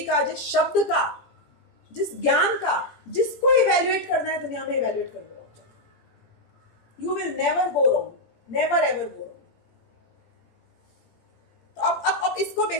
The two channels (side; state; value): right; late; 17 ms